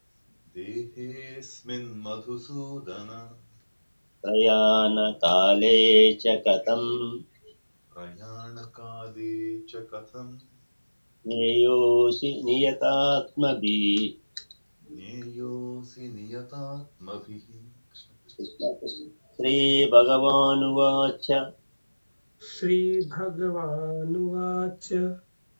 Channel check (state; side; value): inverted; both; correlation -1.00